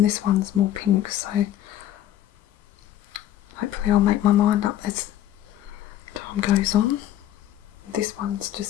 this one's more pink, so hopefully I'll make my mind up as time goes on. This one's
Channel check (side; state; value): right; quieter; 12.2 dB